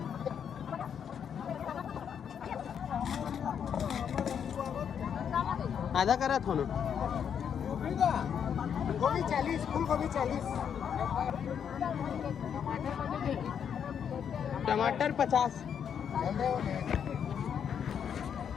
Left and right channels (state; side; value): quieter; right; 8.0 dB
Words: आधा करा था ना गोभी 40 फूल गोभी 40 टमाटर 50